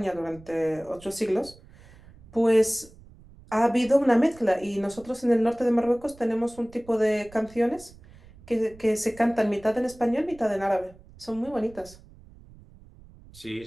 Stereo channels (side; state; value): right; noise; rumble, 23 dB below the sound